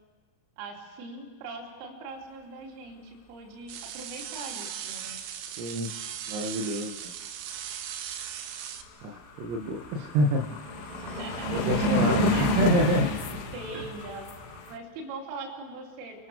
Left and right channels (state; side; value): late; left; 34 ms